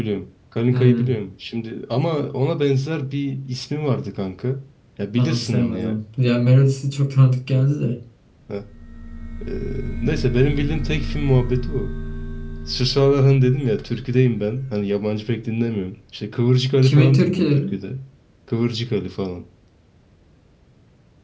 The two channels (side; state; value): both; identical; correlation 1.00